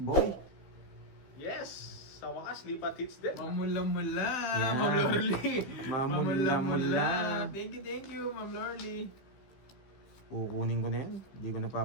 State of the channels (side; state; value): right; late; 15 ms